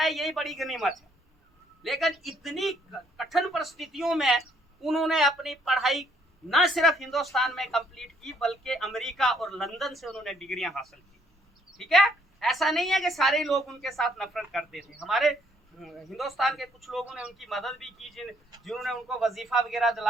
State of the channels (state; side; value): normal; both; correlation 0.67